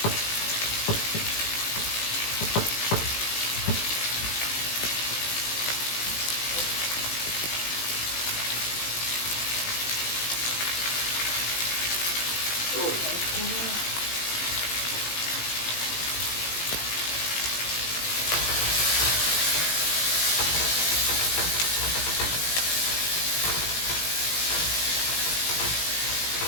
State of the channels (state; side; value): late; right; 18 ms